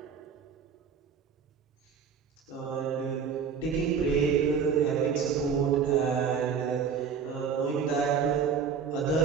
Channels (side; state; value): left; quieter; 6.5 dB